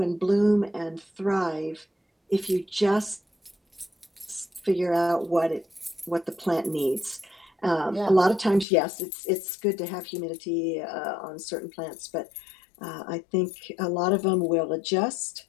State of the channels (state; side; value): drops out; right; at 8.7 s